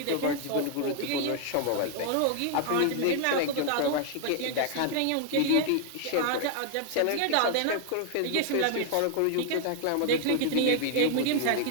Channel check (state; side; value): different; both; correlation 0.00